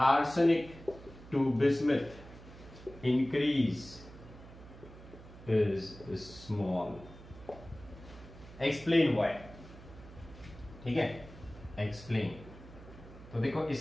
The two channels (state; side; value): noise; right; hum, 17 dB below the sound